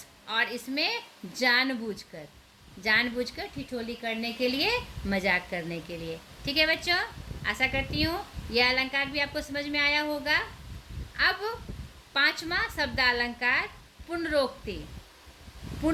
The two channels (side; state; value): both; identical; correlation 1.00